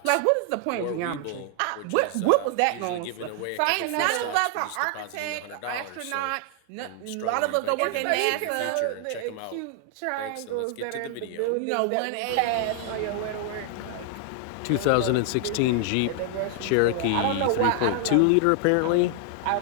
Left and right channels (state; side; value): different; both; correlation 0.00